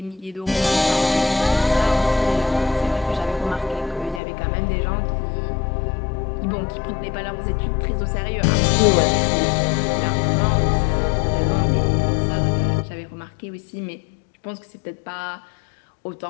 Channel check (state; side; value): drops out; right; at 4.2 s